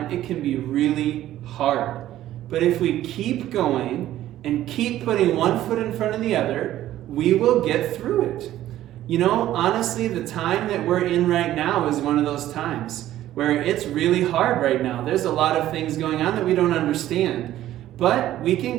it can be really hard. But if we keep going and keep putting one foot in front of the other, we will get through it. You know, honestly, the time that we're in right now is one of those times where it's really hard right now. There's a lot of things going on that we don't understand, but we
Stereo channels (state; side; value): quieter; left; 13.4 dB